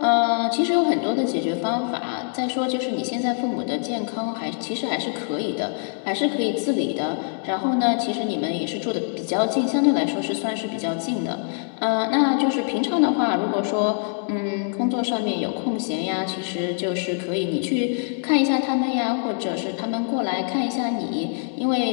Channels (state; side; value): silent; right; 56 dB below the other